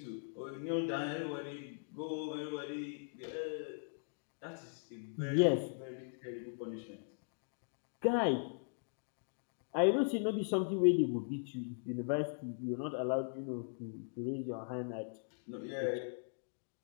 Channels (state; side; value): silent; right; digital silence